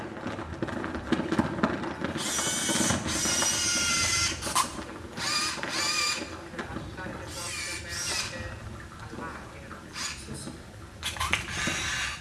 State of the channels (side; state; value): both; identical; correlation 1.00